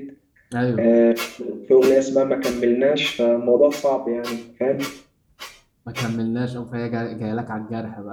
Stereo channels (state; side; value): identical; both; correlation 1.00